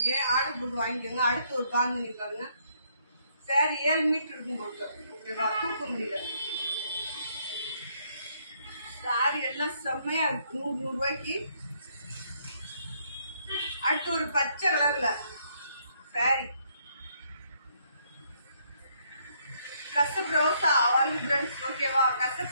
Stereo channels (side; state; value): both; inverted; correlation -0.70